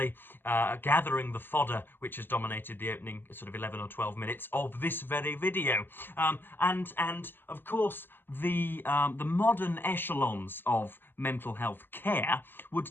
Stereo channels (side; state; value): right; late; 0.096 ms